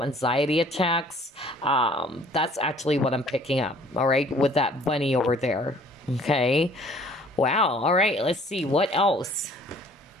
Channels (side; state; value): both; normal; correlation 0.55